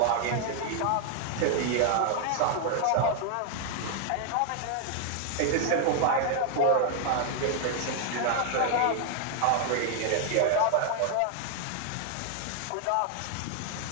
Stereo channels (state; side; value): different; both; correlation 0.00